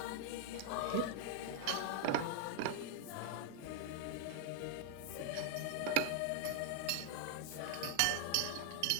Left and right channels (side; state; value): both; different; correlation 0.00